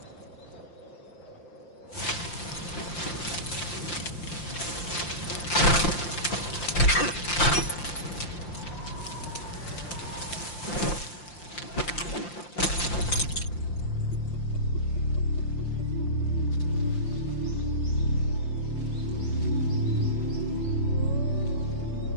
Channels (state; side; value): late; right; 5.8 ms